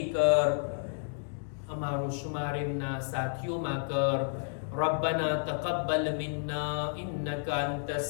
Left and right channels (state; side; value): silent; right; digital silence